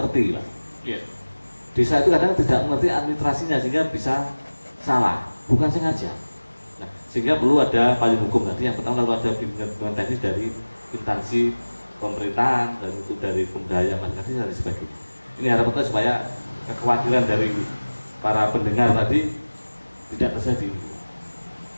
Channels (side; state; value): both; inverted; correlation -1.00